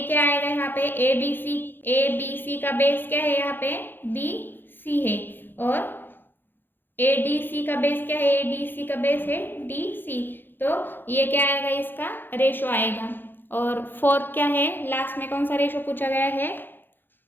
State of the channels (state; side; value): late; right; 0.097 ms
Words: क्या आएगा यहाँ पे? ए बी सी का बेस क्या है? यहाँ पे बी सी है और ए डी सी का बेस क्या है? ए डी सी का बेस है डी सी। तो ये क्या आएगा? इसका रेशो आएगा। और फोर्थ क्या है? लास्ट में कौन सा रेशो पूछा गया है?